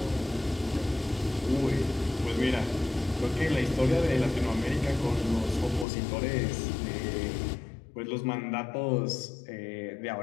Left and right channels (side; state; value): right; drops out; at 5.9 s